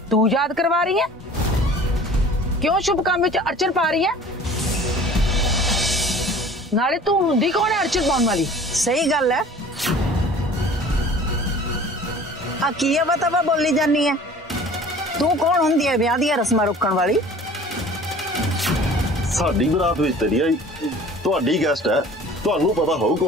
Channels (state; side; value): normal; both; correlation 0.46